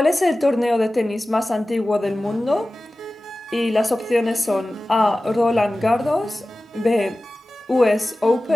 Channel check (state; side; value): normal; both; correlation 0.96